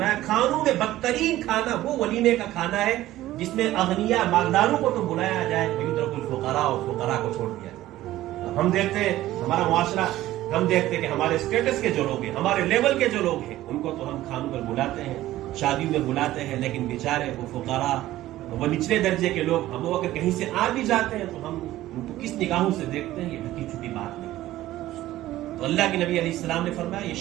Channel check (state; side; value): quieter; left; 15.2 dB